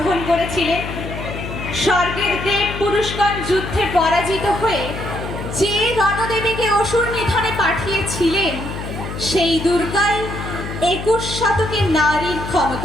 করেছিলেন, স্বর্গের দেব পুরুষগণ যুদ্ধে পরাজিত হয়ে যে রণদেবীকে অসুর নিধনে পাঠিয়েছিলেন, সেই দুর্গাই 21 শতকে নারীর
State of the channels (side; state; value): left; noise; hum, 8 dB below the sound